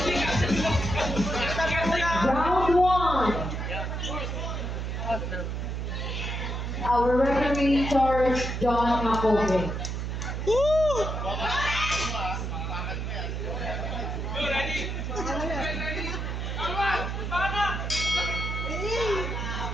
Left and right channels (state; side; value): noise; right; hum, 3 dB below the sound